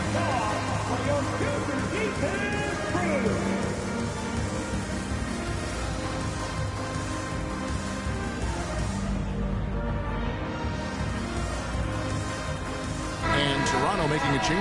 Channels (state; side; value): identical; both; correlation 1.00